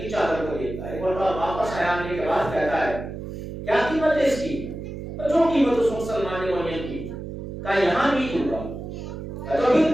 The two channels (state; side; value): noise; right; hum, 8 dB below the sound